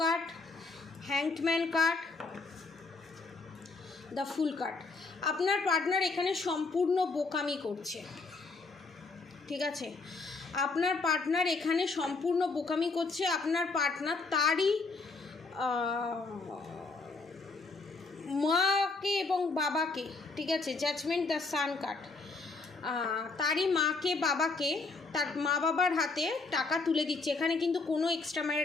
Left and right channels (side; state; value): right; quieter; 3.9 dB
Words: hanged man card, the fool card। আপনার পার্টনার এখানে সম্পূর্ণ বোকামি করছে, ঠিক আছে, আপনার পার্টনার এখানে সম্পূর্ণ বোকামি করছে। আপনার পার্টনার তারই মাকে এবং বাবাকে, ঠিক আছে, জাজমেন্ট, দ্য সান কার্ড, তারই মাকে বাবাকে, তার মা বাবার হাতে টাকা তুলে দিচ্ছে। এখানে কিন্তু কোনো এক্সট্রা